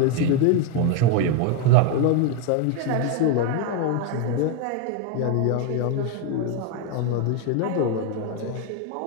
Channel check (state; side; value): different; both; correlation 0.01